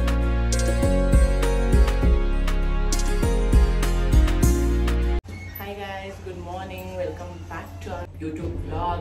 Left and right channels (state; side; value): identical; both; correlation 1.00